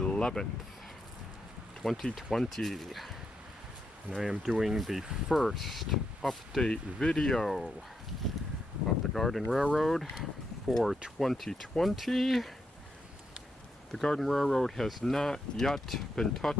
2020. And I am doing the first update video of the Garden Railroad for 2020. The Garden Railroad has not yet been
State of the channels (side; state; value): both; normal; correlation 0.82